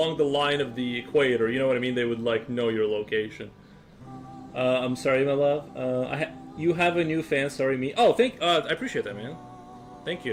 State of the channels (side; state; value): both; identical; correlation 1.00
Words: the line of the equator, you know what I mean, they would like know your location. I'm sorry, my love. You have a new fan. Sorry, me. Oh, I appreciate that, man. Thank